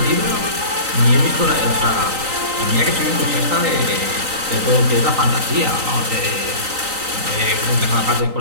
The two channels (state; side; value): late; left; 3.9 ms